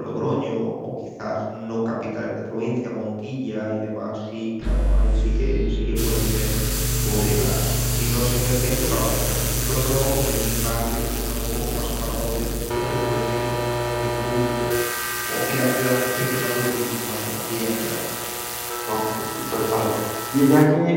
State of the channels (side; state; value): both; identical; correlation 1.00